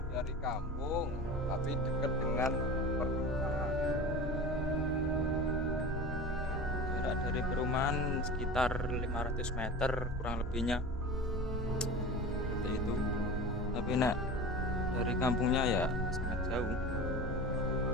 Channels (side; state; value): both; normal; correlation 0.33